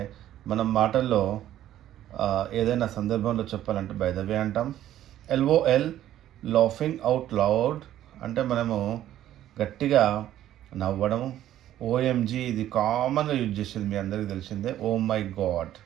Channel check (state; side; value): quieter; left; 12.4 dB